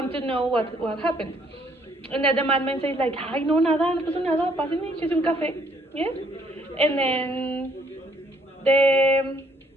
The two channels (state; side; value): normal; both; correlation 0.66